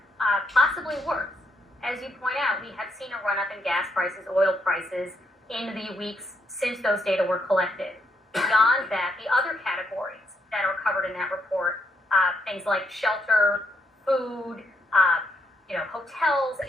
possibly worse. As you point out, we have seen a run-up in gas prices, oil prices in the weeks since those data were collected. Beyond that, the other categories that are covered in that report, things like shelter, food, hotels,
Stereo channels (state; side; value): normal; both; correlation 0.76